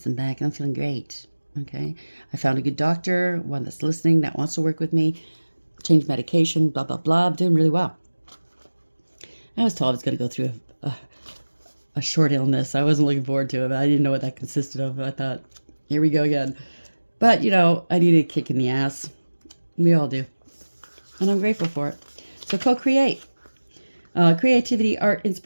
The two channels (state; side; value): inverted; both; correlation -1.00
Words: back, and I'm feeling great, okay? I found a good doctor, one that's listening, that wants to work with me, change medication, blah, blah, blah. I'm doing really well. I was told I was going to go through a short illness. I wasn't looking forward to it. I didn't know what that consisted of. I thought, here we go again. But, I needed a kick in the ass. We all do. And I'm grateful for it. So co-create. Creativity, art,